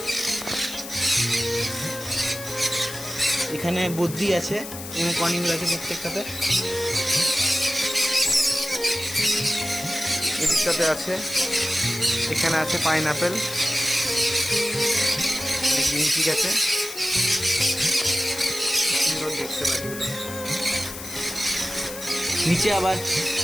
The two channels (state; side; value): noise; left; hiss, 11 dB below the sound